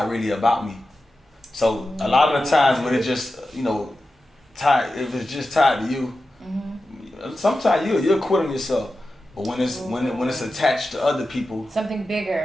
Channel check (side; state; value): both; normal; correlation 0.92